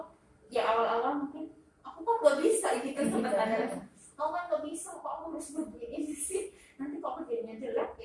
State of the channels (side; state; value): both; identical; correlation 1.00